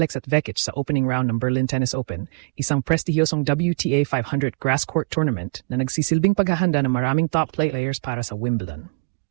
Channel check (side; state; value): left; quieter; 33.9 dB